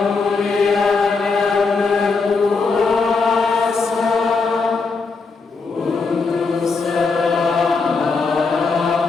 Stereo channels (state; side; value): quieter; right; 4.4 dB